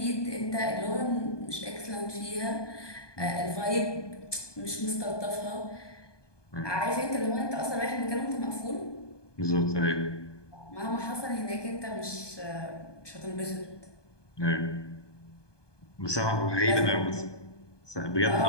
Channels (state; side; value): late; right; 1.2 ms